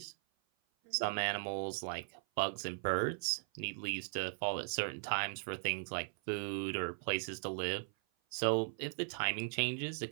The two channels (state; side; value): silent; left; 52 dB below the other